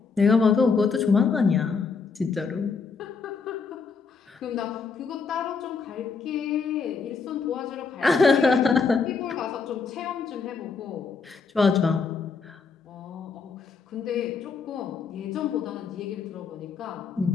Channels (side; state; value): right; quieter; 5.1 dB